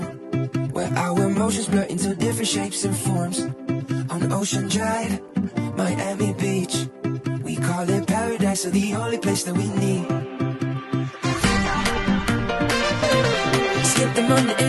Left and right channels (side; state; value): both; identical; correlation 1.00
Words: where our emotions blur into different shapes and forms. On Ocean Drive, Miami Beach, we call it paradise, or the only place that we need. Skip the Monday